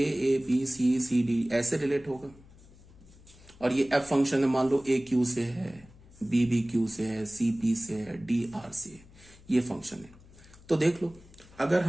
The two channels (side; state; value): left; noise; hum, 23 dB below the sound